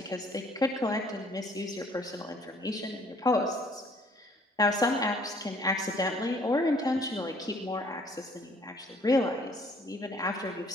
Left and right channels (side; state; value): both; normal; correlation 0.59